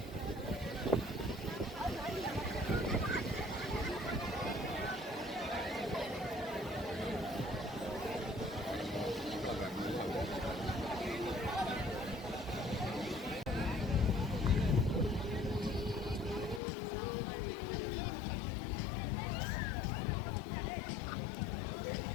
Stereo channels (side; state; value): right; drops out; at 16.6 s